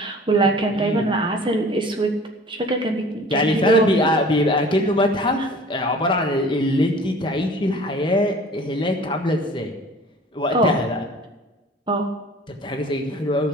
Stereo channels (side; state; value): both; normal; correlation 0.46